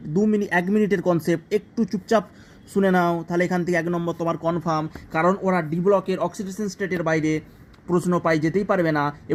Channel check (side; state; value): both; identical; correlation 1.00